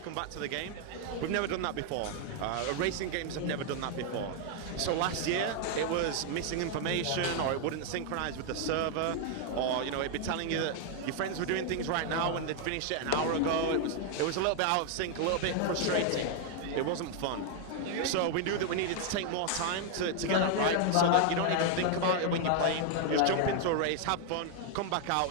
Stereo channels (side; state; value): both; different; correlation 0.00